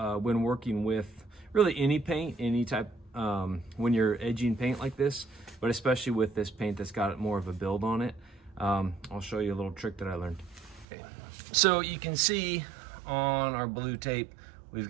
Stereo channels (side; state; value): left; drops out; at 10.9 s